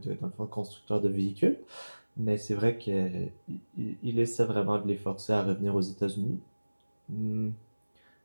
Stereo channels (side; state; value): both; inverted; correlation -1.00